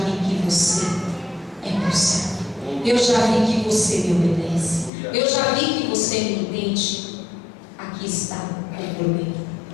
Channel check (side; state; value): right; drops out; at 4.9 s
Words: que você é meu servo. Eu já vi que você me obedece. Eu já vi que você me entende. Aqui está o cordeiro